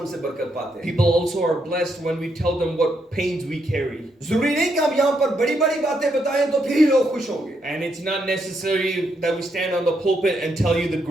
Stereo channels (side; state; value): both; normal; correlation 0.78